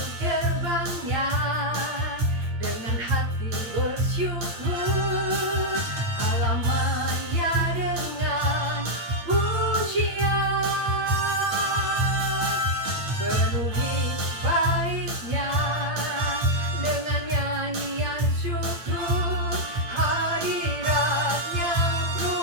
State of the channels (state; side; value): late; left; 8.7 ms